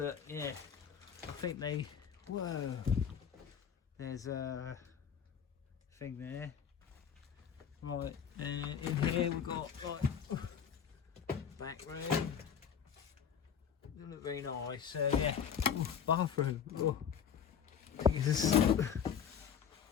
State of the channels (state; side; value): quieter; right; 7.7 dB